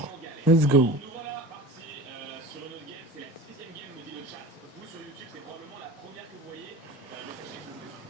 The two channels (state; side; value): normal; both; correlation 0.36